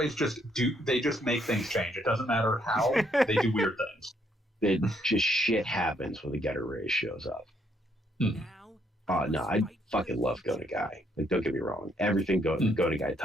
just make things change. It doesn't matter how, they do weird things. It just shit happens when the Getter Ray shows up. Oh no, I fucking love Go Nagai. Like, don't get me wrong, everything Go Nagai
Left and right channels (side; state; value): both; normal; correlation 0.71